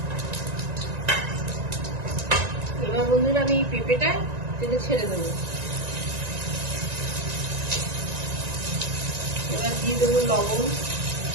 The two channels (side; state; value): left; late; 1.9 ms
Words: এবার বন্ধুরা আমি এই পেঁপেটা তেলে ছেড়ে দেবো। এবার দিয়ে দেবো লবণ,